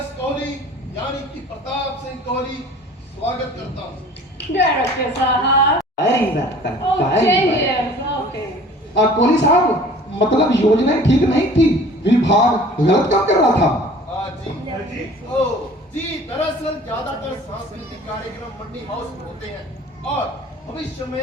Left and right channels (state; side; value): normal; both; correlation 0.48